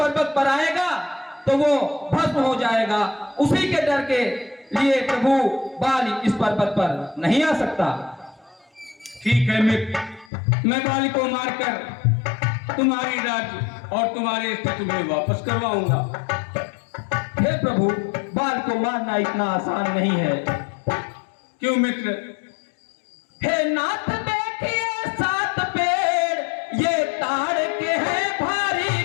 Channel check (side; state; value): right; drops out; at 10.3 s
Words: पर आएगा तो वो भस्म हो जाएगा। उसी के डर के लिए प्रभु बाल इस पर्वत पर नहीं आ सकता। ठीक है मित्र, मैं बाल को मारकर तुम्हारी राज्य और तुम्हारे स्थिति में वापस करवाऊंगा। हे हे प्रभु, बाल को मारना इतना आसान नहीं है। क्यों मित्र? हे नाथ देखिए 7 पेड़ ये ताड़ के हैं भारी